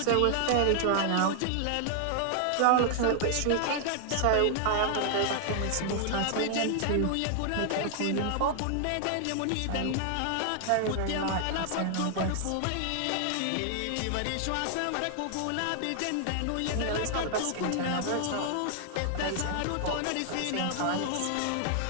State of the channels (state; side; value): different; both; correlation 0.00